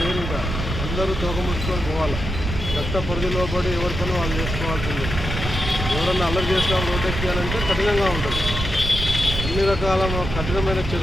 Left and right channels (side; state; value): right; noise; rumble, 5 dB below the sound